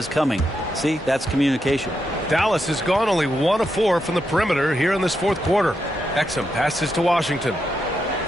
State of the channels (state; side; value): normal; both; correlation 0.83